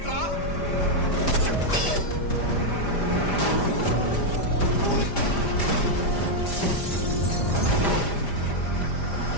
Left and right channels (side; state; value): right; late; 5.0 ms